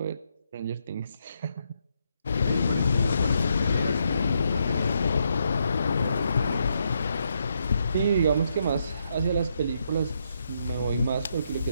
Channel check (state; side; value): inverted; both; correlation -0.78